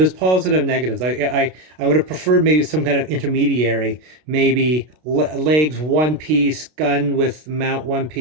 positive and negatives. I would have preferred maybe some kind of intermediary, maybe legs one piece, gun with mount one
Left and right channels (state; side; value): late; left; 32 ms